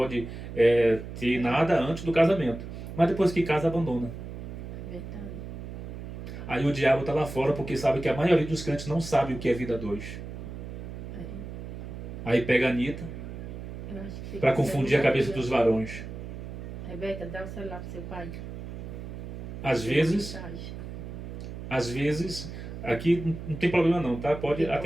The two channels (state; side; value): noise; right; hum, 9 dB below the sound